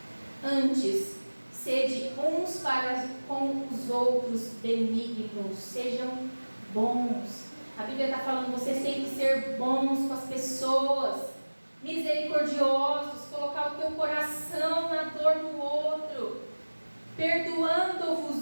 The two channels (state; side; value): inverted; both; correlation -1.00